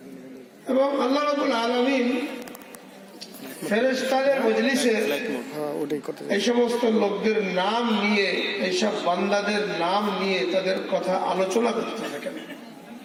এবং আল্লাহ রাব্বুল আলামিন ফেরেশতাদের মজলিসে এই সমস্ত লোকদের নাম নিয়ে, এইসব বান্দাদের নাম নিয়ে তাদের কথা আলোচনা করতে থাকেন।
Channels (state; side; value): identical; both; correlation 1.00